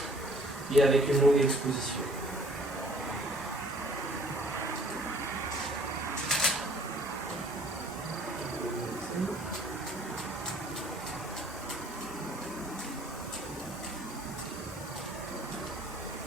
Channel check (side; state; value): both; normal; correlation 0.56